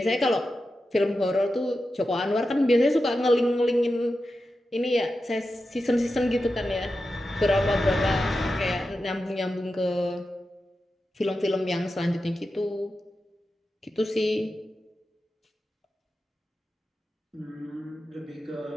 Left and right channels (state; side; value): normal; both; correlation 0.91